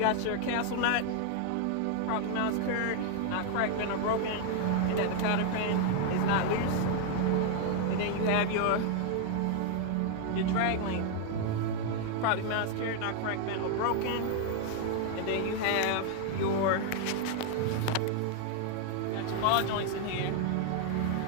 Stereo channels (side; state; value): both; different; correlation 0.00